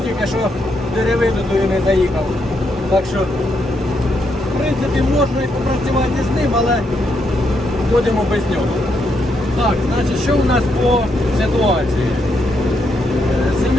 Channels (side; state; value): both; normal; correlation 0.78